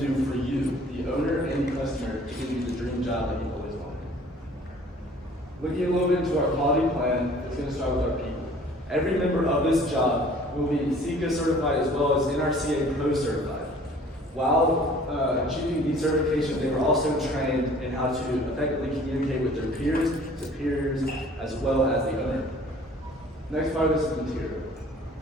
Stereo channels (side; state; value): both; normal; correlation 0.51